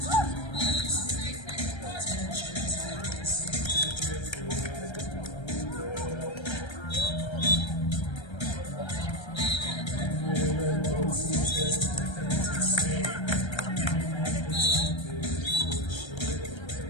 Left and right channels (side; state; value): right; late; 1.3 ms